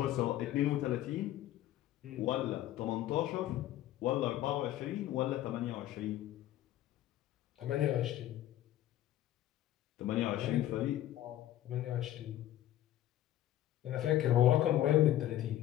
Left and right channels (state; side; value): quieter; right; 13.2 dB